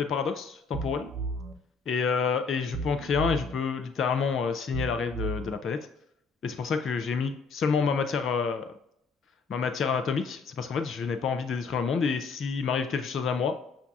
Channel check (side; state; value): right; quieter; 4.9 dB